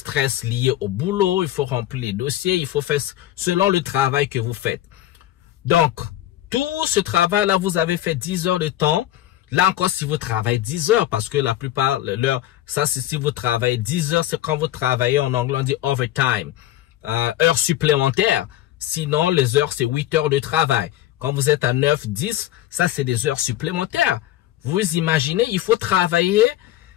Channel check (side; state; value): right; quieter; 13.7 dB